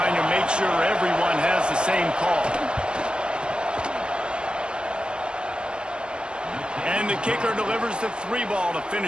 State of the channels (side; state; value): left; late; 0.052 ms